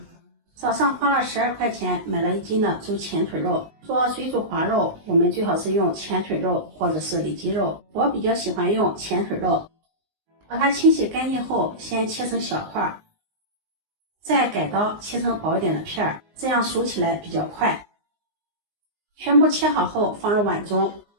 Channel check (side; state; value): left; late; 19 ms